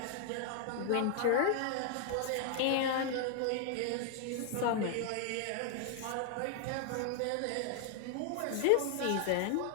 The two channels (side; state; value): both; different; correlation 0.00